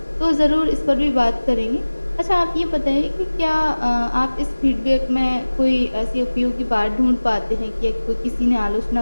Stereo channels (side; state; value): both; inverted; correlation -1.00